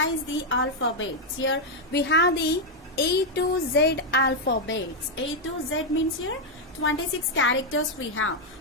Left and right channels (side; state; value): both; normal; correlation 0.00